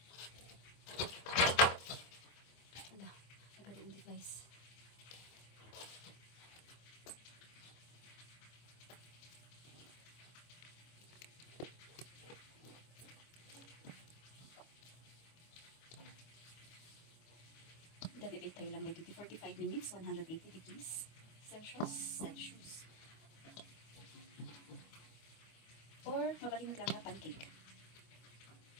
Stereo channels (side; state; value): right; late; 25 ms